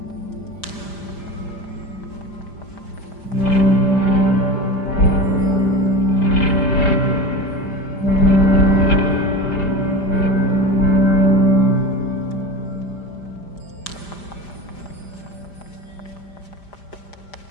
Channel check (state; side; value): late; right; 5.0 ms